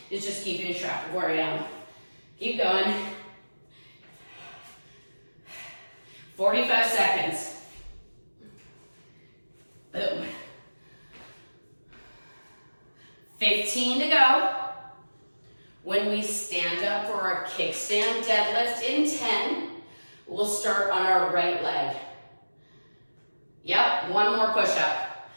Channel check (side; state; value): both; inverted; correlation -1.00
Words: is just keeping track of where I am. Keep going. 45 seconds. Boom. 15 to go. When we stand up for our kickstand deadlift in 10, we'll start on our right leg. Yep, one more push-up.